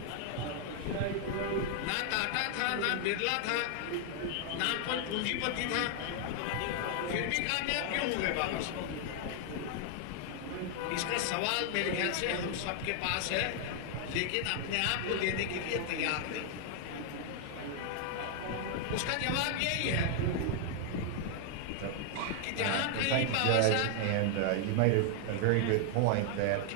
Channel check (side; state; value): both; different; correlation 0.00